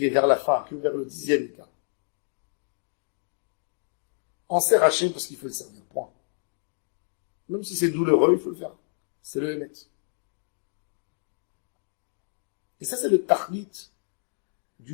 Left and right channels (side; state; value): right; silent; digital silence